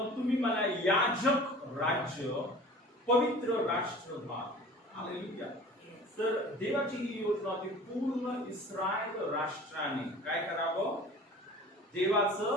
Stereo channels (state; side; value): normal; both; correlation 0.43